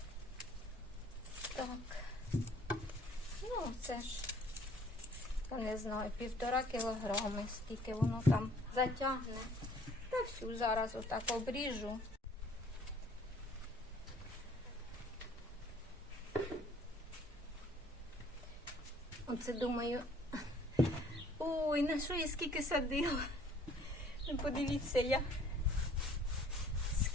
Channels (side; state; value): both; normal; correlation 0.57